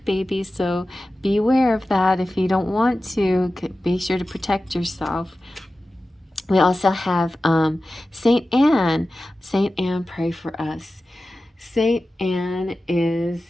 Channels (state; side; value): normal; both; correlation 0.95